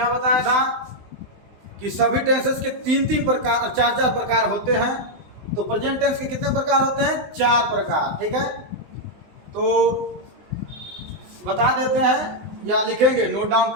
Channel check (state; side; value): late; left; 20 ms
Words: बताया था कि सभी टेंसेस के तीन तीन प्रकार, चार चार प्रकार होते हैं। तो प्रेजेंट टेंस के कितने प्रकार होते हैं? 4 प्रकार। ठीक है, तो बता देते हैं या लिखेंगे, नोट डाउन